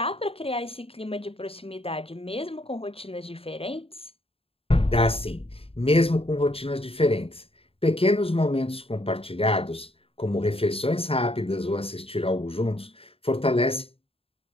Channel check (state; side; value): late; right; 0.27 ms